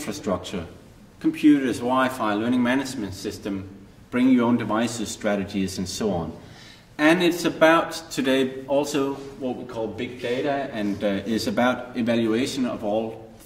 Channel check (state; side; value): identical; both; correlation 1.00